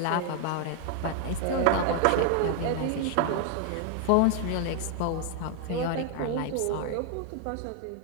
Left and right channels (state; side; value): different; both; correlation 0.00